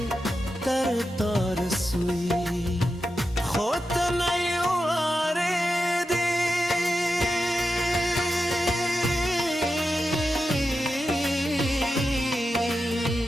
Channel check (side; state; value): both; normal; correlation 0.89